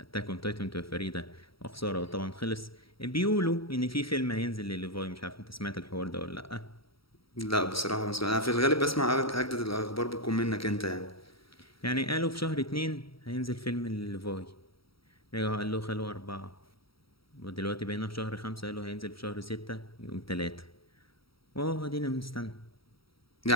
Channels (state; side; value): late; right; 0.75 ms